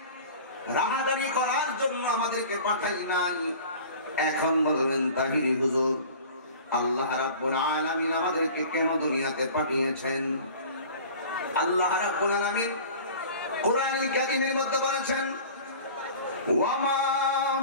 রাহাজানি করার জন্য আমাদেরকে পাঠাই নাই। এখন বলবেন তাহিরি হুজুর, আল্লাহ রাব্বুল আলামিন আমাদেরকে কেন দুনিয়াতে পাঠিয়েছেন? আল্লাহ রাব্বুল আলামিন কোরআনুল কারীমের মধ্যে বলেছেন, ওয়ামা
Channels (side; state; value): both; inverted; correlation -0.42